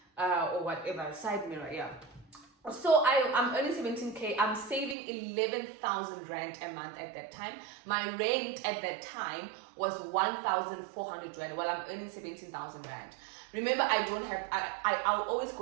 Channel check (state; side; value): drops out; left; at 5.0 s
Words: or whatever, side mirror, yeah. So I'm earning 17K. I'm saving 11,000 Rand a month at that time. My rent at that time was 1,400 Rand. Well, I'm earning 17,000 Rand. Remember, I'll always